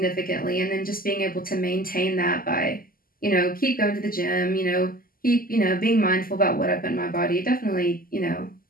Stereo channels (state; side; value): late; right; 0.42 ms